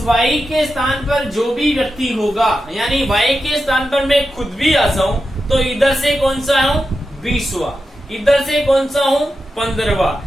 y के स्थान पर जो भी व्यक्ति होगा, यानी y के स्थान पर मैं खुद भी आ जाऊं तो इधर से कौन सा हूं? 20वां। इधर से कौन सा हूं?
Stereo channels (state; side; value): normal; both; correlation 0.90